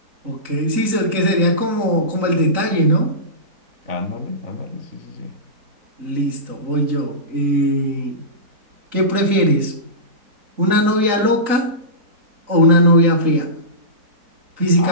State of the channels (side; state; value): left; late; 3.8 ms